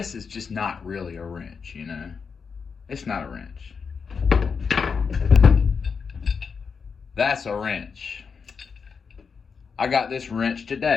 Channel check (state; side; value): quieter; right; 5.7 dB